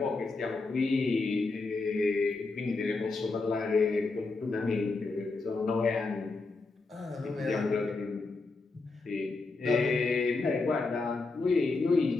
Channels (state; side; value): quieter; right; 3.7 dB